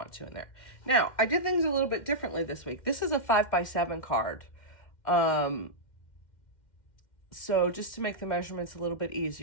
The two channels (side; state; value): right; late; 2.1 ms